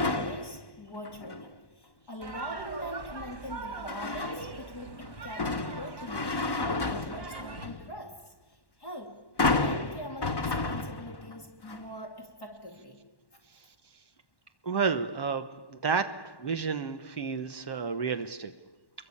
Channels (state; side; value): late; right; 1.1 ms